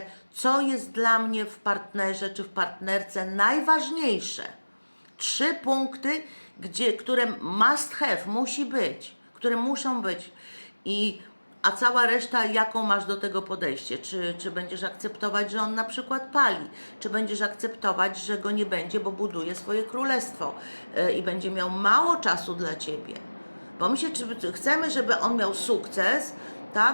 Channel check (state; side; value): inverted; both; correlation -1.00